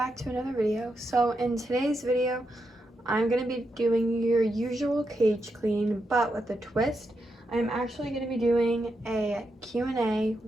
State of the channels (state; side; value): normal; both; correlation 0.84